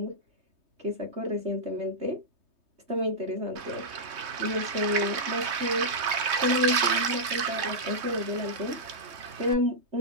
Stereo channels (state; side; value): late; left; 3.2 ms